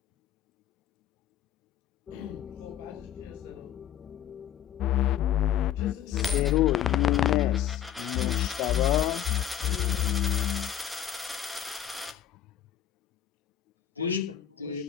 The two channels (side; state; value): right; quieter; 10.6 dB